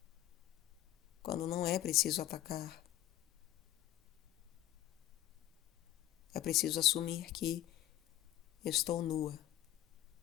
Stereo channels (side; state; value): right; quieter; 13.2 dB